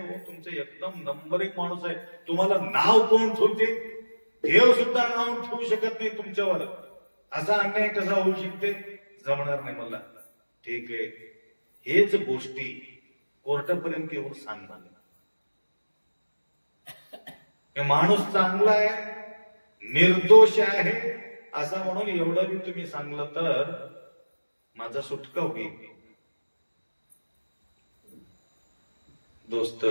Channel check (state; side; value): inverted; both; correlation -1.00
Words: तुमचं एकदम नंबर 1 माणूस आहे. तुम्हाला नाव कोण ठेवते, देव सुद्धा नाव ठेवू शकत नाही तुमच्यावर. असा अन्याय कसा होऊ शकते, जमणार नाही मला. ठीक आहे, हेच गोष्टी कोर्टापर्यंत येऊन सांगणार. माणूस चांगला आहे, निर्दोष आहे असं म्हणून एवढं बी तुम्ही सांगलं तर माझा सुटका होईल. दोस्त,